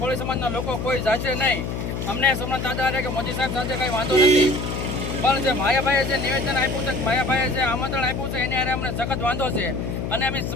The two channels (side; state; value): left; noise; hum, 4 dB below the sound